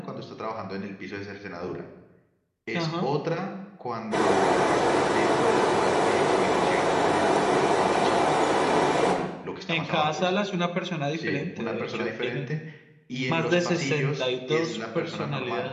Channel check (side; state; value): both; identical; correlation 1.00